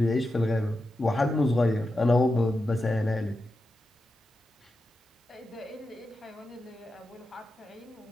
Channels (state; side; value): normal; both; correlation 0.89